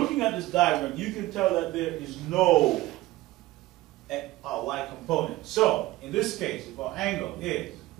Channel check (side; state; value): left; quieter; 17.8 dB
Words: at this diagram, you can tell that there is no y component. So, in this case, if our angle is